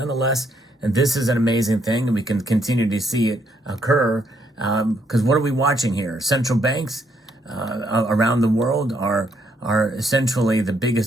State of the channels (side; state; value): both; normal; correlation 0.73